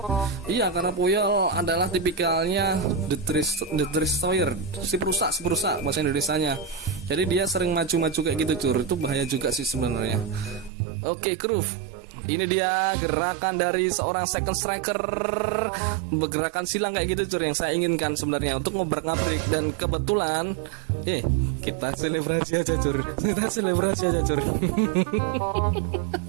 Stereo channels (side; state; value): left; drops out; at 10.7 s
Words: Iya, karena Puyol adalah tipikalnya the destroyer, si perusak bahasa Indonesianya. Jadi dia sering maju kayak gitu Cur. Itu bahaya juga sih sebenarnya. Oke, Groove. Ini dia gerakan dari seorang second striker, gerakan silang kayak gitu Cur, yang saya inginkan sebenarnya untuk ngobrak-ngabrik. Dan kebetulan kita selebrasi aja Cur.